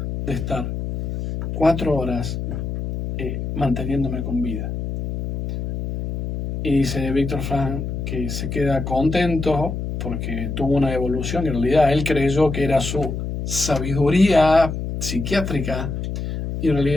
de estar 4 horas manteniéndome con vida. Y dice Víctor Frank que se queda contento porque tuvo una evolución, y en realidad él creyó que era su sabiduría psiquiátrica y en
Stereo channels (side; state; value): left; noise; hum, 4 dB below the sound